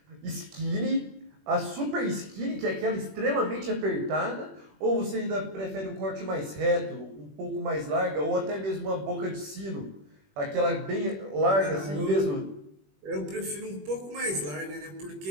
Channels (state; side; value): late; left; 21 ms